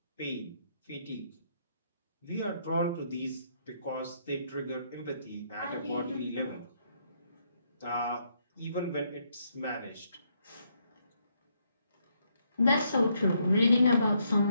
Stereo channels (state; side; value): inverted; both; correlation -0.74